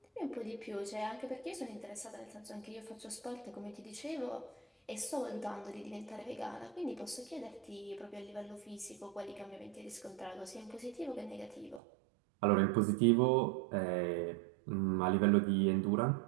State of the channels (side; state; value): left; drops out; at 11.8 s